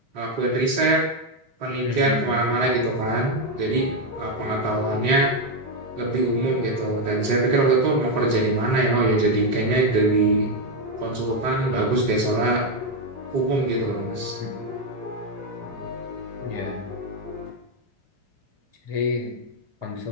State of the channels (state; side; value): late; left; 3.7 ms